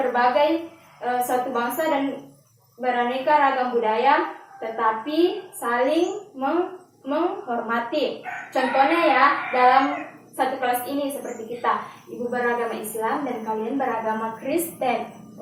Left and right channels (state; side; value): identical; both; correlation 1.00